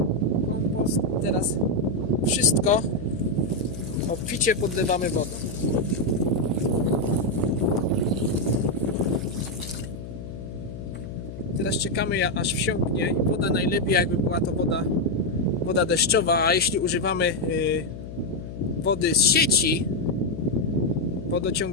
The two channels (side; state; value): left; noise; hum, 10 dB below the sound